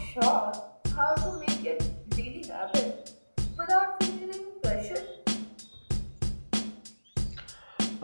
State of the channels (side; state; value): both; inverted; correlation -1.00